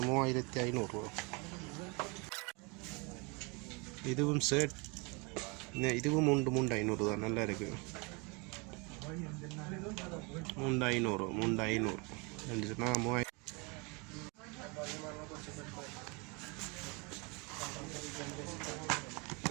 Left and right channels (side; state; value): left; quieter; 29.9 dB